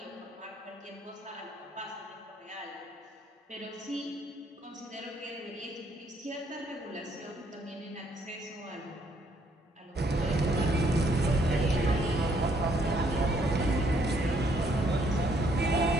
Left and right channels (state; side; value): normal; both; correlation 0.68